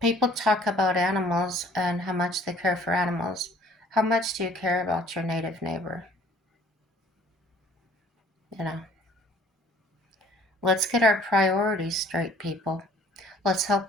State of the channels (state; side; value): normal; both; correlation 0.54